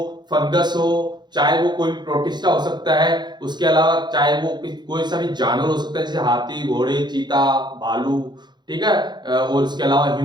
फंगस हो, चाहे वो कोई प्रोटिस्टा हो सकता है, उसके अलावा चाहे वो कोई सा भी जानवर हो सकता है, जैसे हाथी, घोड़े, चीता, भालू, ठीक है, और उसके अलावा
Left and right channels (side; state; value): left; late; 0.21 ms